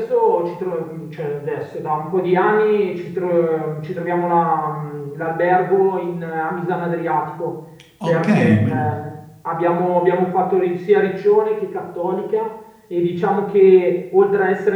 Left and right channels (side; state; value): both; identical; correlation 1.00